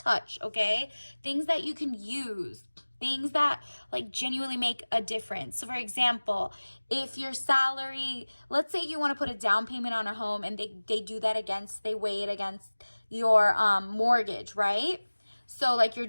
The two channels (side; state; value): both; inverted; correlation -1.00